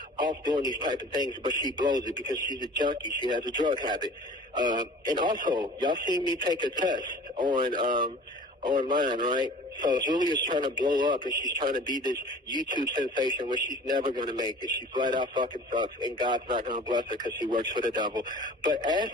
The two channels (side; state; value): both; normal; correlation 0.44